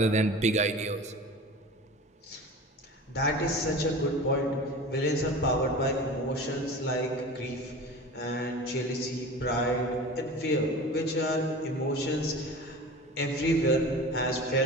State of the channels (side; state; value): both; normal; correlation 0.36